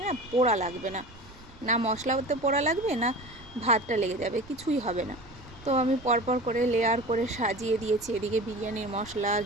না পোড়া লাগবে না, না মশলাতে পোড়া লাগবে না ভাতটা লেগে যাবে, কিছুই হবে না। তো আমি পরপর করে লেয়ার করে সাজিয়ে দিয়েছি। এদিকে বিরিয়ানির মশলা,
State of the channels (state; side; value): noise; right; rumble, 21 dB below the sound